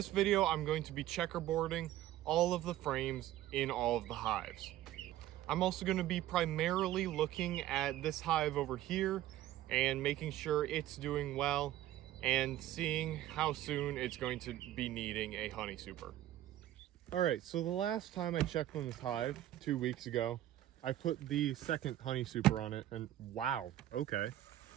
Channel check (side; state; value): left; quieter; 13.7 dB